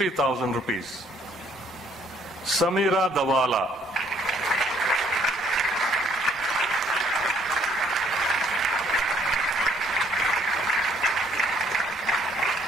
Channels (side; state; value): both; normal; correlation 0.64